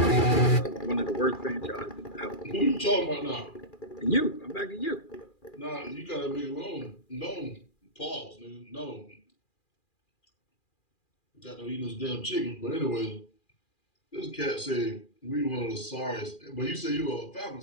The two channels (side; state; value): right; late; 2.4 ms